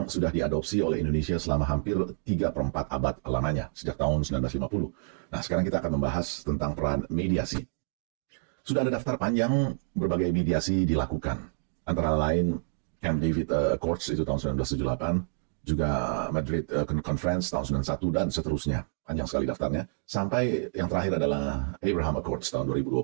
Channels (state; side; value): silent; left; digital silence